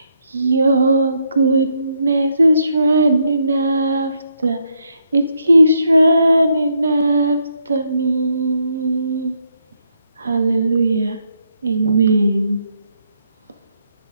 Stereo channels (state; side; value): inverted; both; correlation -0.76